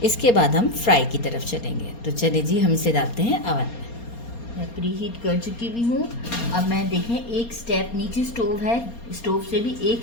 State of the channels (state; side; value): late; right; 4.3 ms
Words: इसके बाद हम फ्राई की तरफ चलेंगे। तो चलिए जी, हम इसे डालते हैं अवन में। मैं प्री हीट कर चुकी भी हूँ। अब मैं देखें, एक स्टेप नीचे स्टोव है, स्टोव से भी एक